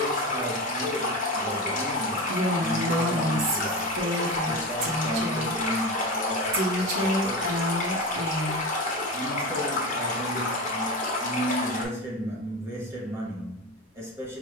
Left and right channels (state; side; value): normal; both; correlation 0.23